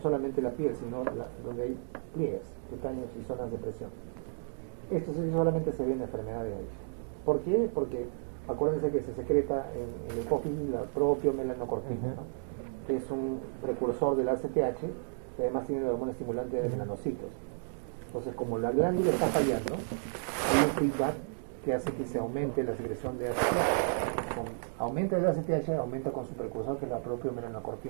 la piel, sino donde hay pliegues cutáneos y zonas de presión. Esto sí solamente se ve en la enfermedad de Addison. ¿Por qué? Porque acuérdense que se secreta en la hipófisis la propio melanocortina, ¿no? Que es un precursor del ACTH, que además tiene la hormona estimulante de melanocitos. Entonces, como la glándula está fallando, hay un feedback que hace que se aumente la secreción de ACTH. Aumenta el ACTH, aumenta con su precursor, que es la propia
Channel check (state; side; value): silent; left; digital silence